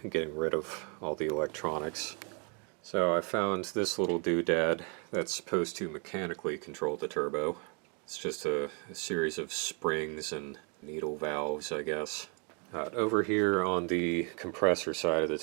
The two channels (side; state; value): left; quieter; 36.1 dB